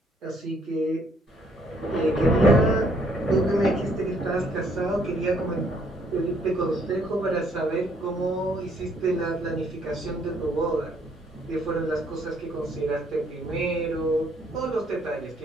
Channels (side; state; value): both; normal; correlation 0.67